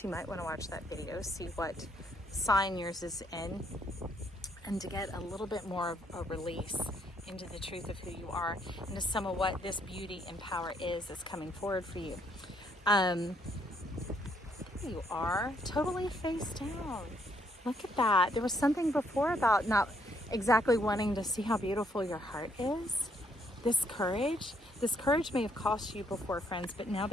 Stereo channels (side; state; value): both; normal; correlation 0.71